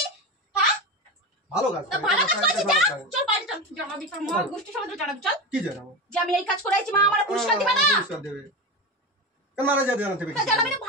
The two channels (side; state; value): both; normal; correlation 0.21